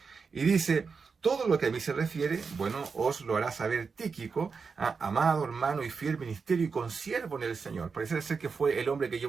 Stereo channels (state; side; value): quieter; left; 5.2 dB